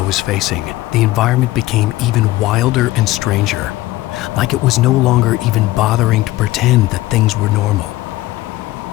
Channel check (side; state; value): right; quieter; 17.3 dB